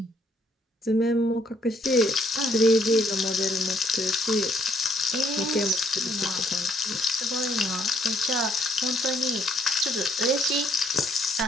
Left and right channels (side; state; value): both; normal; correlation 0.65